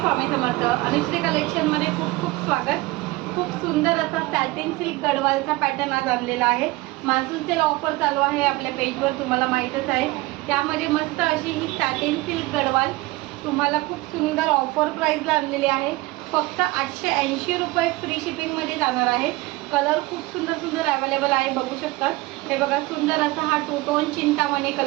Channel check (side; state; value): left; quieter; 21.0 dB